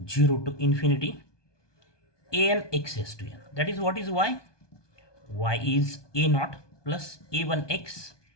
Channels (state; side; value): late; right; 1.2 ms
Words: 0 to infinity an x raised to n. That is, what is y? Y is a naught plus a1x.